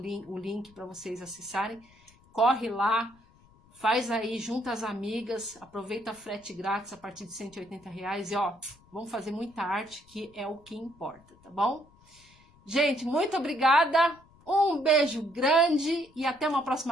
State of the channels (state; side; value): noise; left; rumble, 28 dB below the sound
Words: link para vocês acessarem. Corre lá, faz aí, junta as amigas, aproveita a frete grátis a partir de R$180 e ó, vamos fazer muita arte, que é o que importa, tá bom? Gente, muito obrigada, um beijo grande e até uma